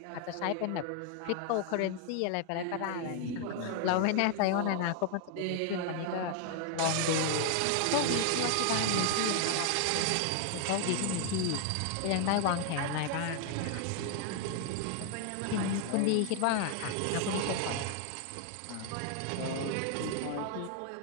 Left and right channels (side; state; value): both; different; correlation 0.00